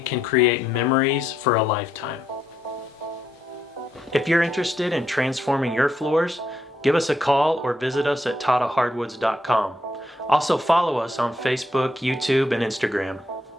can create memories for a lifetime. If you're interested in transforming your floors, give us a call or visit us at tottahardwoods.com. Also follow us on Facebook, YouTube, and Instagram.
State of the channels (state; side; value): normal; both; correlation 0.77